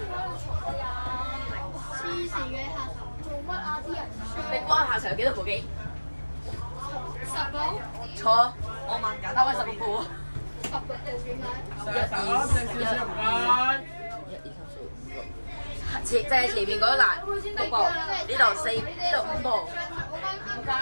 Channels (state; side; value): inverted; both; correlation -1.00